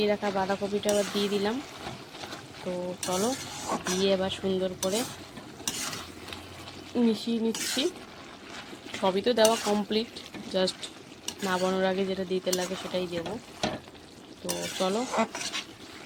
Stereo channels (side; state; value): both; identical; correlation 1.00